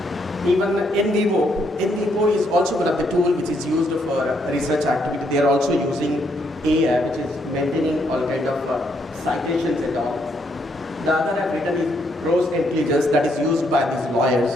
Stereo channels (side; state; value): both; normal; correlation 0.74